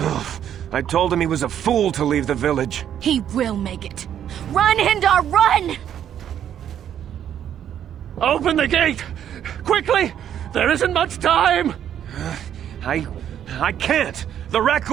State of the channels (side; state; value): left; quieter; 9.9 dB